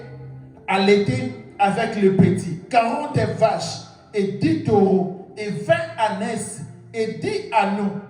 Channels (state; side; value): identical; both; correlation 1.00